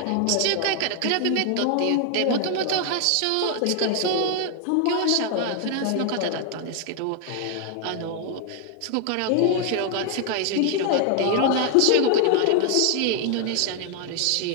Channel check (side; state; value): both; different; correlation 0.00